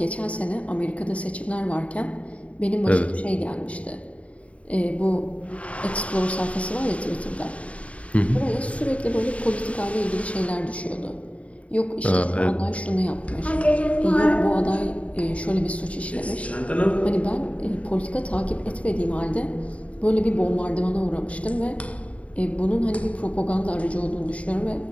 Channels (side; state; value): right; late; 0.065 ms